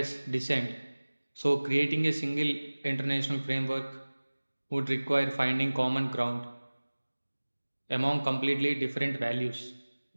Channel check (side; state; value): both; inverted; correlation -1.00